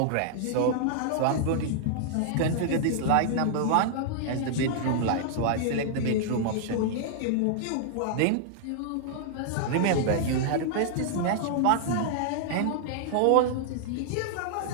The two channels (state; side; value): different; both; correlation -0.01